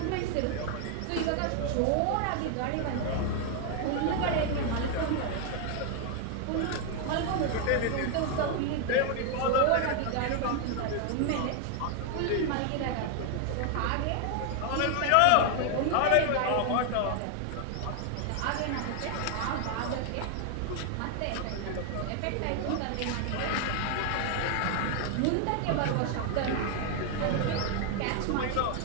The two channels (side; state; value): both; different; correlation 0.00